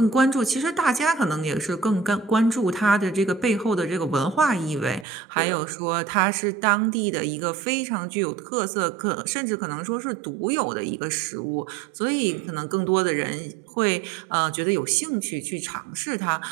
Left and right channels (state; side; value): drops out; left; at 5.1 s